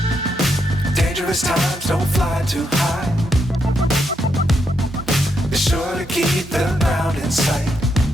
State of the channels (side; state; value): both; normal; correlation 0.80